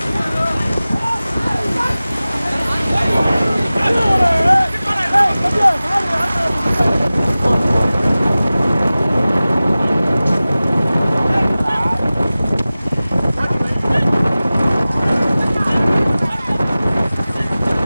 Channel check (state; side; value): inverted; both; correlation -0.97